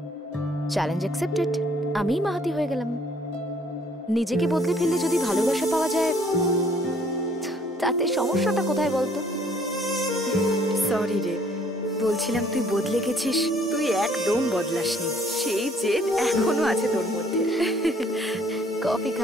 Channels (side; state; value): both; normal; correlation 0.61